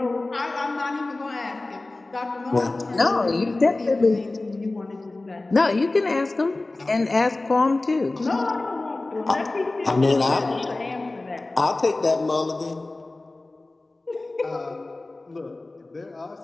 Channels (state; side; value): quieter; right; 3.0 dB